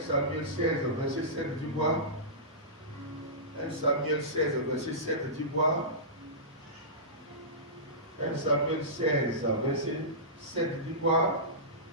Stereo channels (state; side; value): normal; both; correlation -0.19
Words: Samuel 16, verset 7, dis quoi? 1 Samuel 16, verset 7, dis quoi? 1 Samuel 16, verset 7, dis quoi?